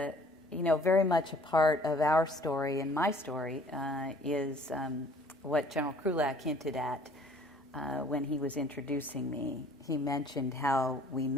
Very much a part of our story and my story is what General Krulak hinted at when he was introducing me. He mentioned how we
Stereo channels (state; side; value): normal; both; correlation 0.55